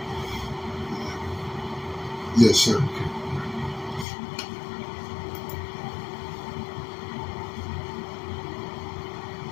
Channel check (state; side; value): drops out; right; at 4.0 s